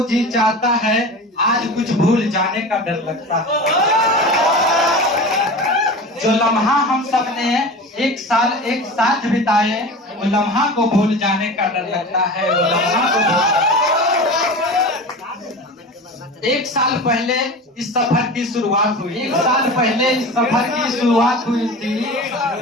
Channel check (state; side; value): normal; both; correlation 0.32